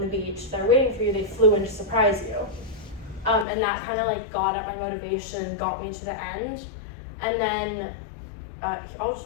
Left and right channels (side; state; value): right; drops out; at 3.5 s